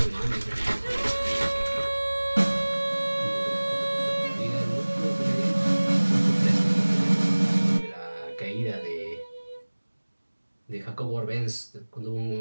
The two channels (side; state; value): both; inverted; correlation -1.00